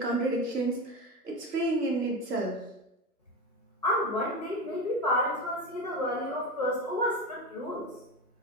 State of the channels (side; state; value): both; normal; correlation 0.21